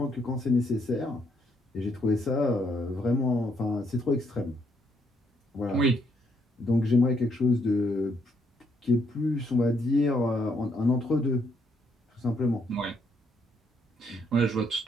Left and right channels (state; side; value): normal; both; correlation 0.72